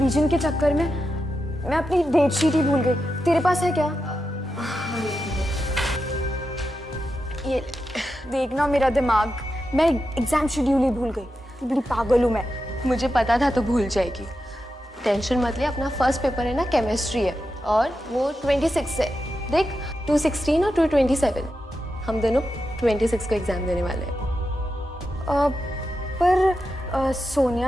के चक्कर में मैं अपनी डेट शीट ही भूल गई। तेरे पास है क्या? ये देखना मेरा दिमाग, मैं एग्जाम शेड्यूल ही भूल गई। बड़ी पागल हूँ मैं। मुझे पता था तो भूल जाएगी। टेंशन मत ले, अपना फर्स्ट पेपर है ना, केमिस्ट्री है और वो 26 है। देख 216 और 227, हम दोनों 26 को एग्जाम देने वाले हैं। पर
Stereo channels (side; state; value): both; normal; correlation 0.89